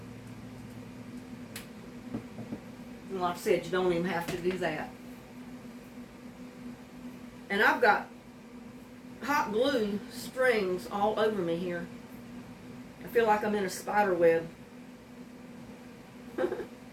And like I said, you don't even have to do that. And I've got hot glue strings all over me here. I feel like I'm in a spider web.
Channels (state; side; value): identical; both; correlation 1.00